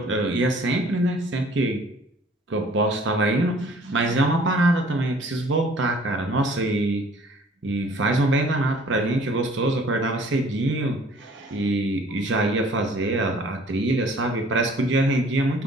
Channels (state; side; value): normal; both; correlation 0.54